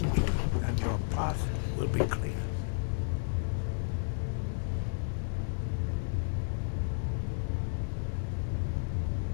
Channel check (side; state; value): right; silent; digital silence